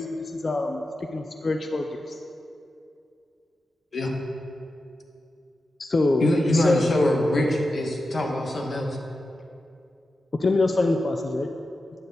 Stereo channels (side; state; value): both; normal; correlation 0.91